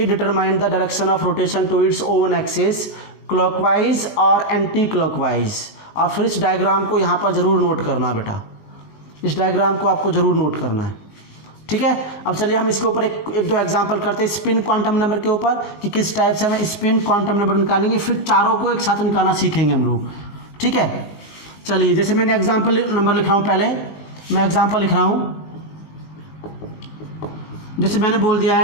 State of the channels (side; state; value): right; late; 20 ms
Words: determine the direction of rotation to its own axis, clockwise और एंटी क्लॉकवाइज। और फिर इस डायग्राम को यहाँ पर जरूर नोट करना बेटा, इस डायग्राम को आपको जरूर नोट करना है, ठीक है। अब चलिए हम इसके ऊपर एक दो एग्जांपल करते हैं स्पिन क्वांटम नंबर के ऊपर, कि किस टाइप से हमें स्पिन क्वांटम नंबर निकालेंगे, फिर चारों को एक साथ निकालना सीखेंगे हम लोग, ठीक है। चलिए, जैसे मैंने एग्जांपल नंबर लिख रहा हूँ, पहले मैं एग्जांपल लिख रहा हूँ। जैसे मैंने बोल दिया